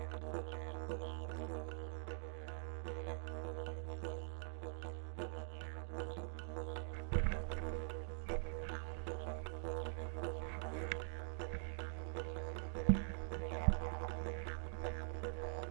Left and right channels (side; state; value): left; silent; digital silence